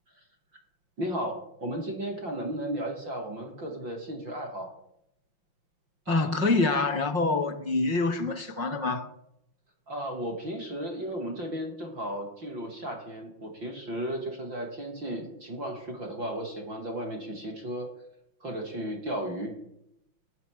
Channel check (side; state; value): left; late; 5.5 ms